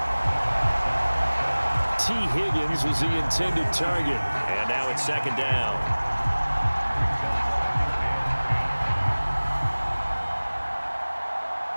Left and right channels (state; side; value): inverted; both; correlation -1.00